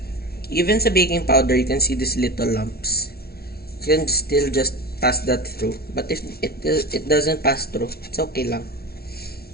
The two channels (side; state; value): right; late; 0.45 ms